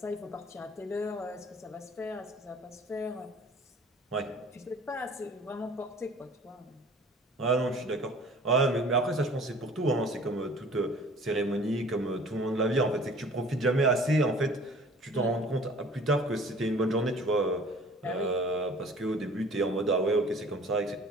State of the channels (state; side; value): normal; both; correlation 0.49